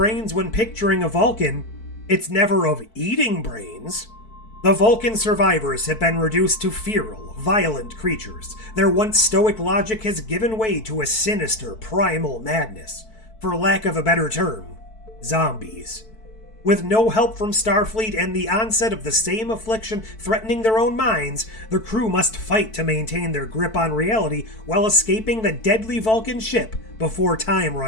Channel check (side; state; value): right; late; 4.5 ms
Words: when picturing a Vulcan, it's never of eating brains. The Vulcan survivors have been reduced to feral, violent creatures. Their once stoic logic has given way to a sinister, primal madness. For lack of a better term, zombies. With no help from Starfleet and the onset of the same affliction threatening their own minds, the crew must fight to maintain their grip on reality while escaping the deadly Vulcan ship before time